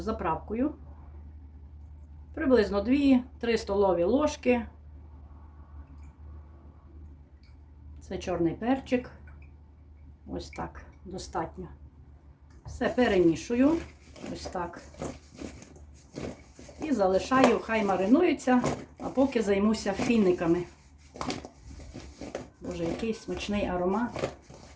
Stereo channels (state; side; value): identical; both; correlation 1.00